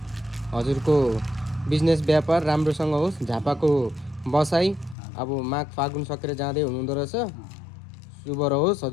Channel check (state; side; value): drops out; right; at 5.0 s